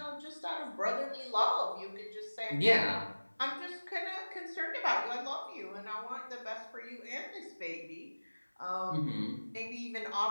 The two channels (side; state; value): both; inverted; correlation -1.00